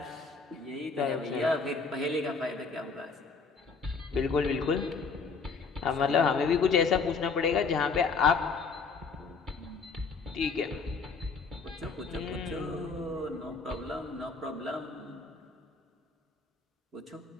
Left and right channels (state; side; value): quieter; right; 4.8 dB